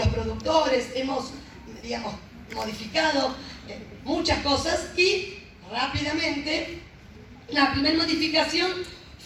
productores, hemos, digamos, modificado muchas cosas y rápidamente la primera modificación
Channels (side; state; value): both; identical; correlation 1.00